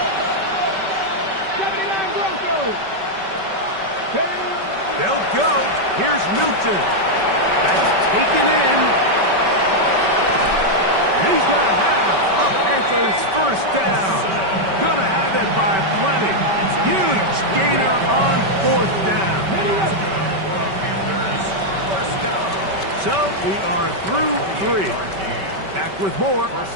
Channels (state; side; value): late; left; 5.2 ms